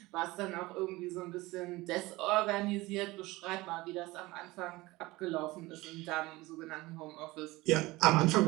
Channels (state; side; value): quieter; left; 20.4 dB